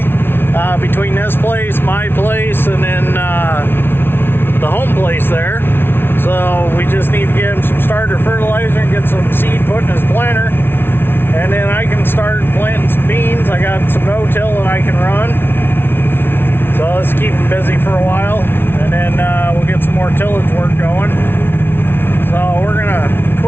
between this place, my place, and then the home place there. So we just need to get him some starter fertilizer and get some seed put in his planter, and then I can start planting some beans. I got some no-till that I can run, so let's keep him busy for a while, and then we'll get some more tillage work going. So we're gonna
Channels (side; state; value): right; late; 0.11 ms